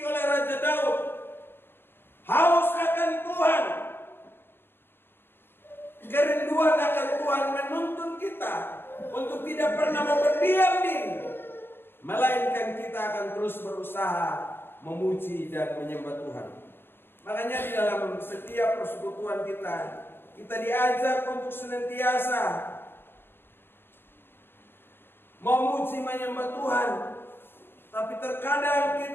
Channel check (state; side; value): late; right; 0.10 ms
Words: oleh Raja Daud? Haus akan Tuhan. Kerinduan akan Tuhan menuntun kita untuk tidak pernah mau berdiam diri, melainkan kita akan terus berusaha memuji dan menyembah Tuhan. Makanya di dalam setiap persekutuan kita diajak untuk senantiasa memuji menyembah Tuhan. Tapi terkadang